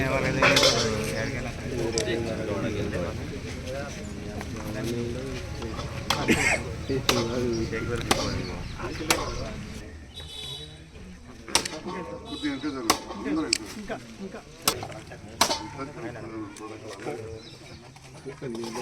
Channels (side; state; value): both; identical; correlation 1.00